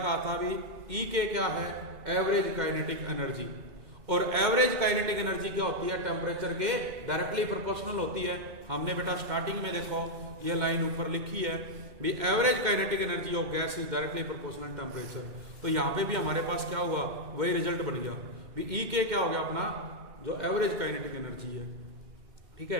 था भी, ई के क्या है, एवरेज काइनेटिक एनर्जी, और एवरेज काइनेटिक एनर्जी क्या होती है, टेम्परेचर के डायरेक्टली प्रोपोर्शनल होती है। हमने बेटा स्टार्टिंग में देखो ये लाइन ऊपर लिखी है भी, average kinetic energy of gas is directly proportional temperature. तो यहाँ पे भी हमारे पास क्या हुआ, वही रिजल्ट बन गया भी, ई के क्या हो गया अपना जो एवरेज काइनेटिक एनर्जी है। ठीक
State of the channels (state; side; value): late; left; 2.1 ms